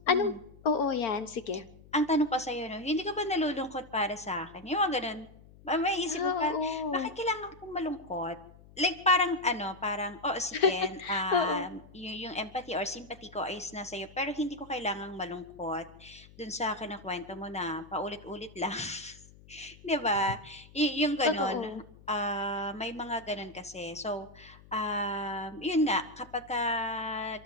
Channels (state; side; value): noise; left; hum, 22 dB below the sound